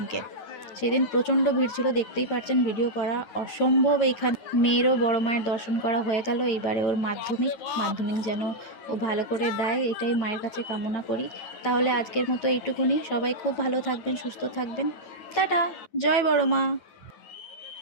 সেদিন প্রচণ্ড ভিড় ছিল, দেখতেই পাচ্ছেন, ভিডিও করা অসম্ভব। এইখানে মেয়েরও বড় মায়ের দর্শন করা হয়ে গেল। এইবারে ওর মাধ্যমিক যেন ও ভালো করে দেয়, এটাই মায়ের কাছে কামনা করি। তাহলে আজকের মতো এইটুকুনি। সবাই খুব ভালো থাকবেন, সুস্থ থাকবেন। টাটা, জয় বড় মা।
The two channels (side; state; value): right; late; 9.3 ms